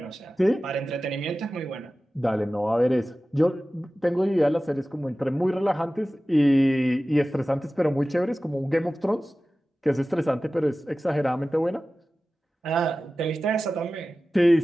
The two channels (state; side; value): normal; both; correlation 0.96